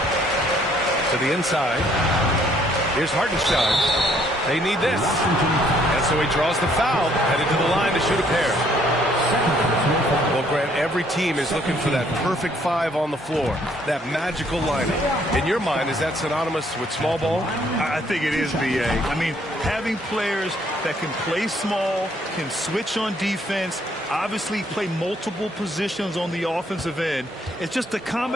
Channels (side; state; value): both; normal; correlation 0.65